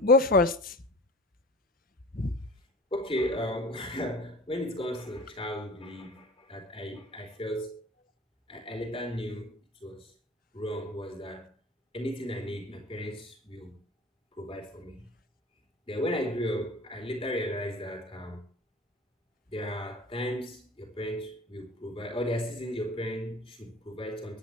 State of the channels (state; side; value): normal; both; correlation 0.39